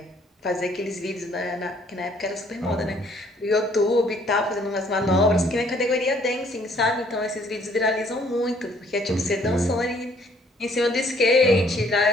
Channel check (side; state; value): both; normal; correlation 0.62